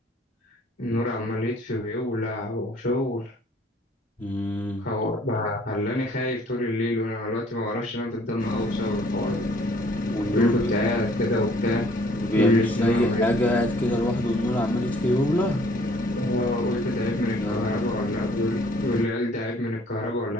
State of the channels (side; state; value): both; normal; correlation 0.59